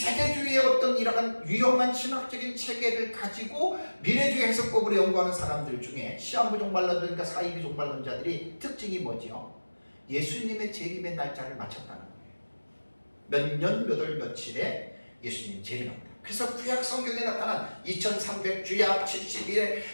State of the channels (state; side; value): inverted; both; correlation -1.00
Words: 어떤 이러한 위험한 신학적인 체계를 가지고 미래주의 해석법으로 연구하는 사람들 중에 시한부 종말론자들과 사이비 종말론자들이 특징이 뭐죠? 예수님의 재림의 날짜를 맞췄다는 거예요. 몇 년 몇 월 며칠에 예수님 재림합니다. 그래서 구약 성경에 나타난 2300주약 71회